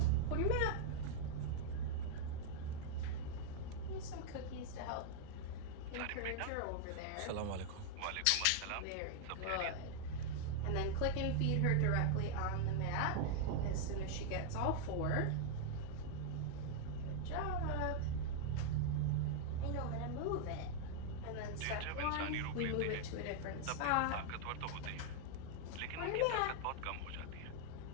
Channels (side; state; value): both; different; correlation 0.00